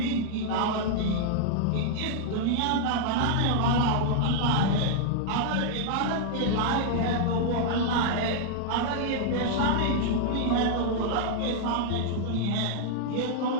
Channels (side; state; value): both; different; correlation -0.01